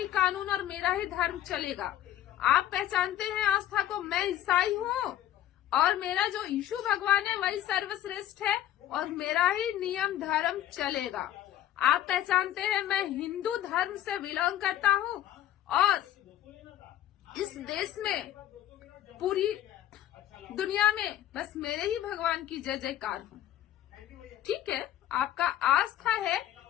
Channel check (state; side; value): quieter; right; 12.5 dB